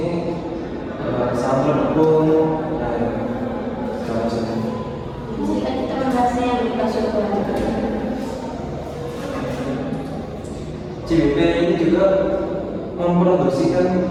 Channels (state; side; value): identical; both; correlation 1.00